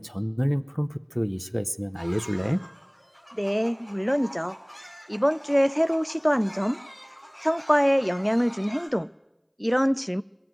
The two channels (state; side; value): identical; both; correlation 1.00